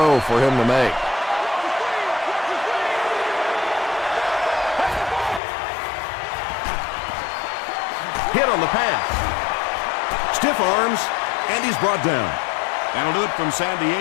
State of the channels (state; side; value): drops out; right; at 5.4 s